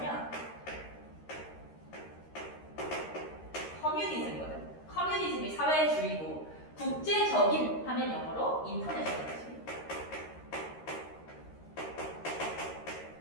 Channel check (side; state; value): right; late; 13 ms